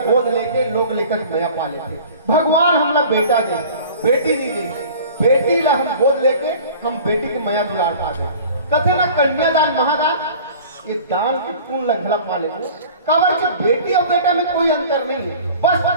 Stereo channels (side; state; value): both; inverted; correlation -0.44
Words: गोद लेके लोग लेकर भैया पा लेते भगवान हमला बेटा दे बेटी नहीं दे बेटी ला हम गोद लेके हम बेटी के मया दुलार पा दे कथे ना कन्यादान महादान ये दान की पूर्ण लंघला पा ले कवर की बेटी और बेटा में कोई अंतर नहीं है